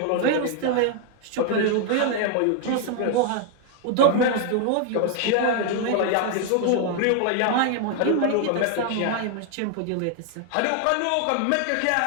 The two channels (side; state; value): both; different; correlation 0.00